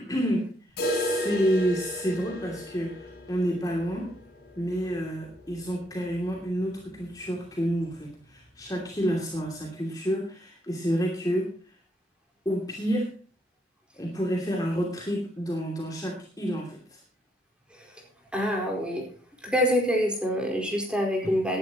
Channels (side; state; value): both; normal; correlation 0.73